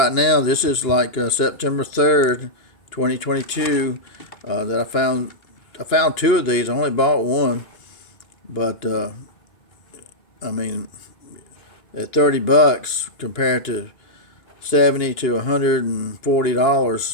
now, this is like September 3rd, 2022, that I found two of these. I only bought one, but I mean, at $30 compared to $70 to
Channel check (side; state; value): right; late; 2.9 ms